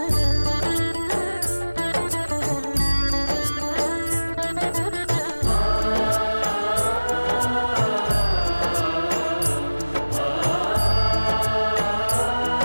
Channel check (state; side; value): inverted; both; correlation -1.00